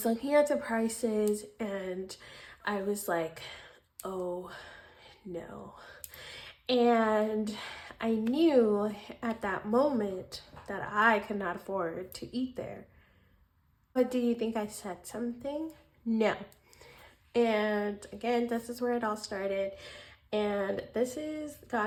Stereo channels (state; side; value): identical; both; correlation 1.00